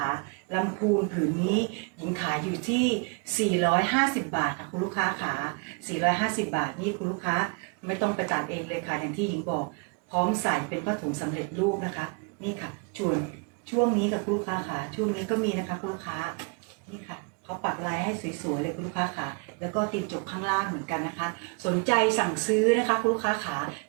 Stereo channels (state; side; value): quieter; left; 36.1 dB